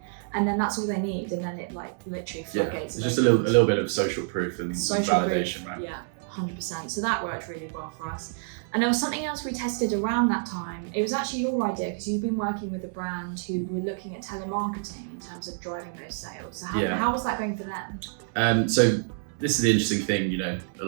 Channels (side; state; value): left; silent; 59 dB below the other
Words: And then that's all they need, and then it like literally floodgates. It's just a little bit of social proof and validation, right? Yeah, 100%. So that worked really well for us. And there was something else we tested around that time. It was actually your idea because you've been working with a brand who were looking at telemarketing in terms of driving those sales. So how was that going for them? So this is the interesting thing, a